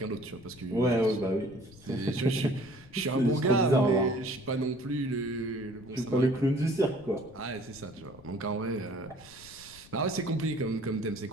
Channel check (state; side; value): noise; left; rumble, 21 dB below the sound